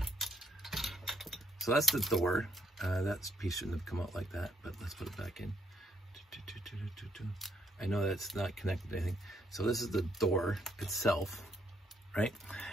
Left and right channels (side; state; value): both; normal; correlation 0.73